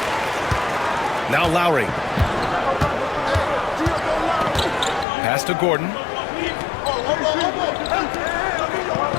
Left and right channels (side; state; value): right; drops out; at 5.1 s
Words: Now Lowry. Pass to Gordon.